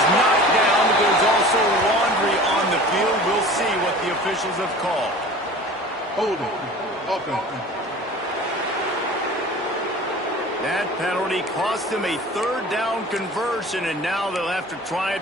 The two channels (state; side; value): normal; both; correlation 0.41